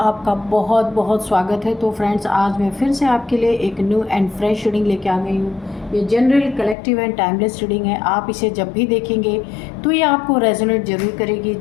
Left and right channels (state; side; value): drops out; right; at 6.8 s